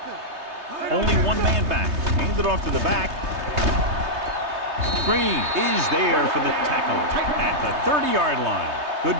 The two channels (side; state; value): left; late; 3.2 ms